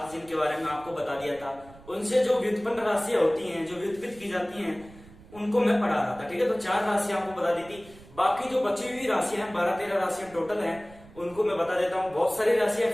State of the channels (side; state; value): right; noise; rumble, 21 dB below the sound